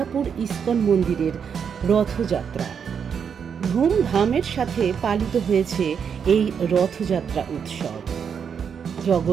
ইস্কন মন্দিরের রথযাত্রা। ধুমধামের সাথে পালিত হয়েছে এই রথযাত্রা উৎসব।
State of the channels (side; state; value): left; quieter; 7.1 dB